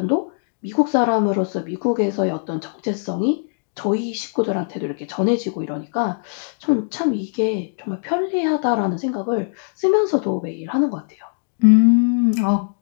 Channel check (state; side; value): silent; right; digital silence